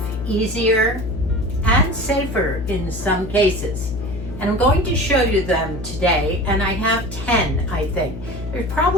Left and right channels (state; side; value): noise; left; hum, 9 dB below the sound